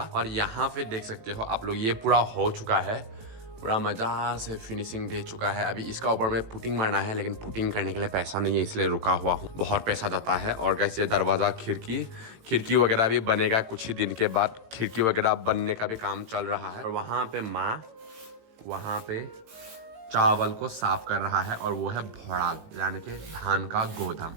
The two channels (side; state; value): left; late; 18 ms